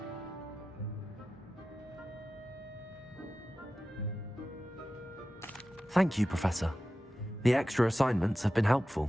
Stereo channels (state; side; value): normal; both; correlation 0.93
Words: Thank you, Professor. The extra assignments have been